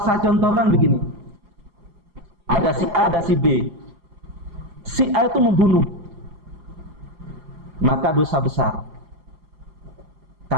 contohkan begini, ada si A, ada si B. Si A itu membunuh, maka dosa besar,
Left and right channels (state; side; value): late; left; 4.8 ms